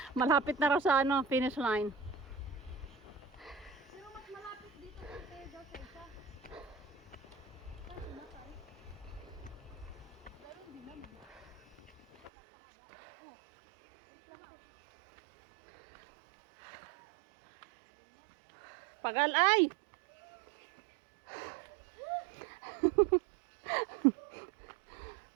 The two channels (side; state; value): left; drops out; at 12.3 s